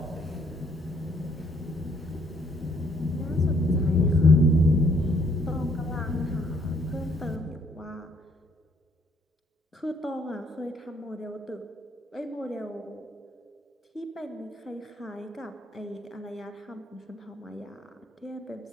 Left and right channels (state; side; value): normal; both; correlation 0.65